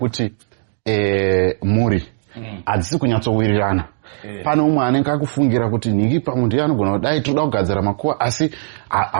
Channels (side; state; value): left; silent; digital silence